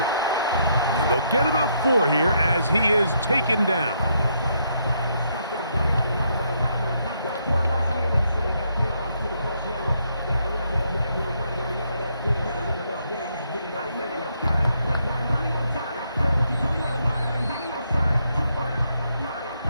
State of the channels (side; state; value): both; inverted; correlation -0.75